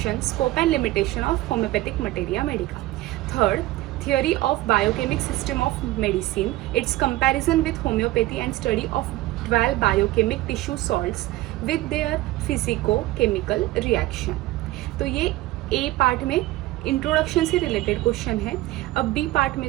scope and limitation of homeopathic materia Medica. Third, theory of biochemic system of medicine, its comparison with homeopathy and study of 12 biochemic tissue salts with their physico-chemical reaction। तो ये ए पार्ट में इंट्रोडक्शन से रिलेटेड क्वेश्चन है। अब बी पार्ट में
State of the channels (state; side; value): quieter; left; 17.3 dB